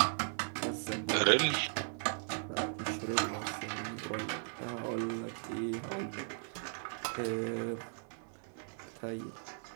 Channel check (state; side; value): silent; left; 53 dB below the other